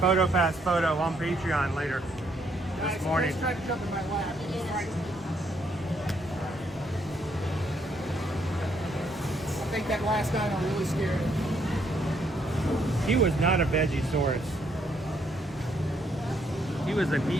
photo on Patreon later this morning. Tried to jump in my lap. I think that last dino really scared him. He was not a Vegisaurus. He was a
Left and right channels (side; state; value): both; normal; correlation 0.72